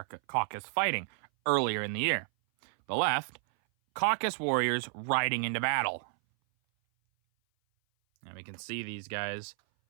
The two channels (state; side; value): silent; left; 57 dB below the other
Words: fighting earlier in the year. The left, Caucasus warriors riding into battle. And we can see these guys,